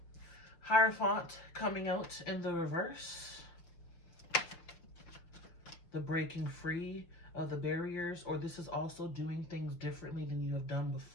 Hierophant coming out in the reverse. The breaking free of the barriers, or this is also doing things differently than you have done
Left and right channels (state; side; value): late; right; 6.0 ms